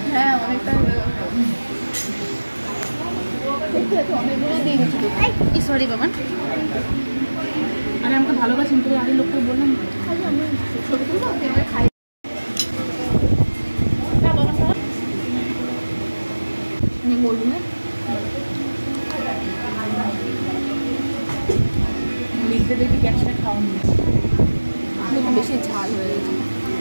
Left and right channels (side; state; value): both; inverted; correlation -1.00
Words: হ্যাঁ অনেকটা অনেকগুলো দিয়ে গেছিল। সরি বাবা, আরে আমাকে ভালোবাসেন তো, আগে লোকটা বললাম আমি ছোটো ছোটো খাই বলবো না, লিখতে দেখবি গ্যাসটা খাওয়ানো একটু বেশি ঝাল হয়ে গেছে।